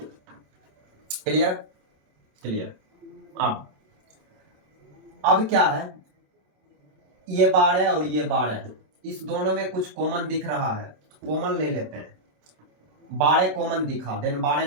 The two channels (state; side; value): late; left; 27 ms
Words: क्लियर? क्लियर। अब क्या है, ये 12 और ये 12, इस दोनों में कुछ कॉमन दिख रहा है, कॉमन ले लेते हैं। 12 कॉमन दिखा, देन 12